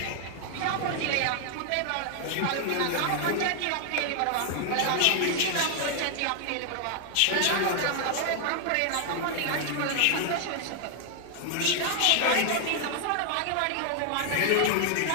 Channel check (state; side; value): different; both; correlation 0.00